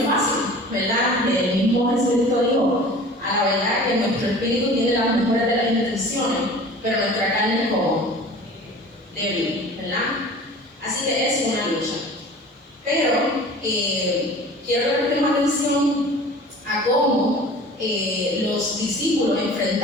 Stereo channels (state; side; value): normal; both; correlation 0.42